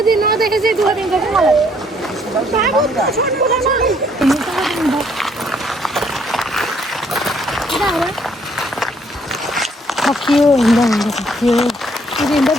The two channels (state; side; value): normal; both; correlation 0.66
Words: दिन नदेखे चाहिँ दुःख दिन्छ कि मलाई थकियो हिँड्दा हिँड्दा थकियो हिँड्दा